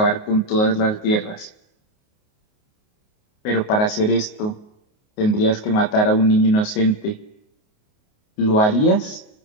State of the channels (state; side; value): late; right; 28 ms